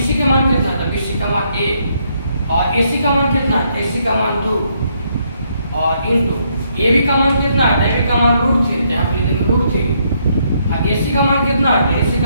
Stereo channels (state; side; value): inverted; both; correlation -0.73